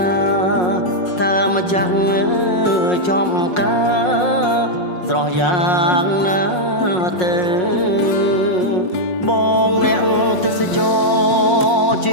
ណាថាម្ចាស់ចំការស្រស់យ៉ាងណាទៅបងអ្នកទេសចរជិ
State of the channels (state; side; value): late; right; 5.5 ms